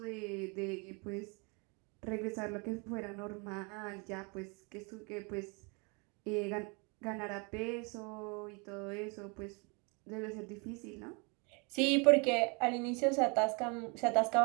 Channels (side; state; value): left; quieter; 31.7 dB